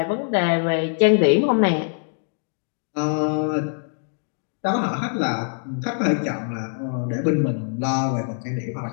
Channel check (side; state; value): right; silent; digital silence